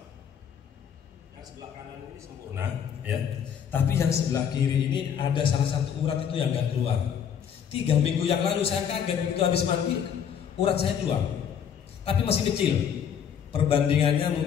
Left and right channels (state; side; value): quieter; right; 8.2 dB